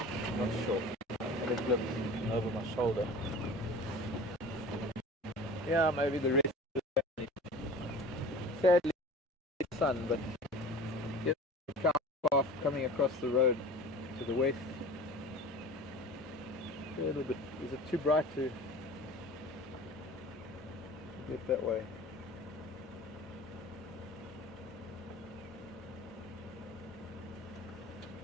Not sure. I had a glimpse over my shoulder. Yeah, maybe the rest of the family. Sadly, it's sun, but there's a cow path coming across the road to the west. A little bit. Is it too bright to get that way?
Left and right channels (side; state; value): both; normal; correlation 0.39